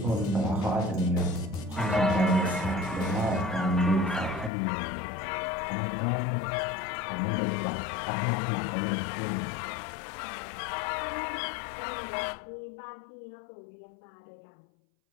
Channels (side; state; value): right; drops out; at 4.5 s